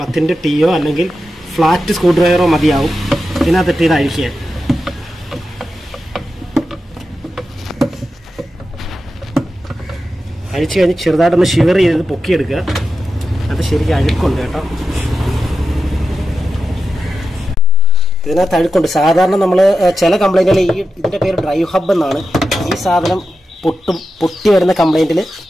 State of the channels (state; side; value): normal; both; correlation 0.90